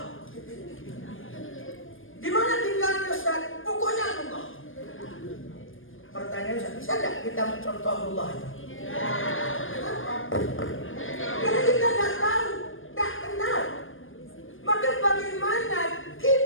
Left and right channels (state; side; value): late; right; 0.59 ms